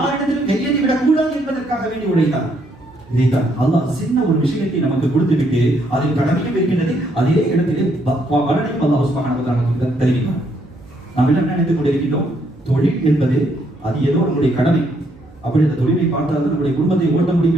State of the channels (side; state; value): right; noise; hum, 26 dB below the sound